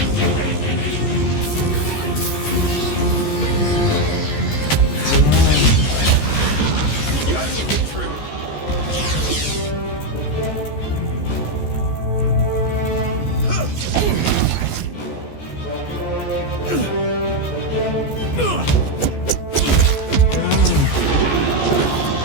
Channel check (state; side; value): late; right; 14 ms